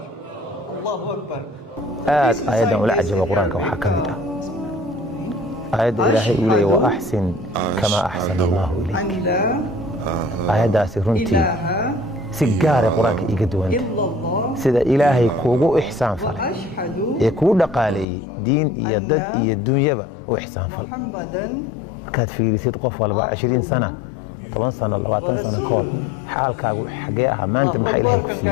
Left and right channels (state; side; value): drops out; right; at 18.1 s